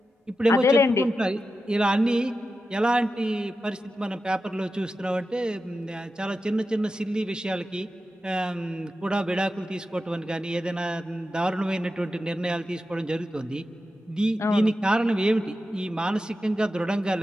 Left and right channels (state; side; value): normal; both; correlation 0.91